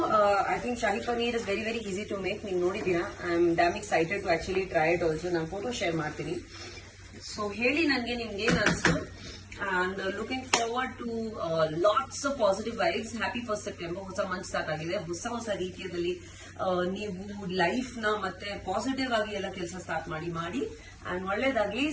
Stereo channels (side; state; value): both; identical; correlation 1.00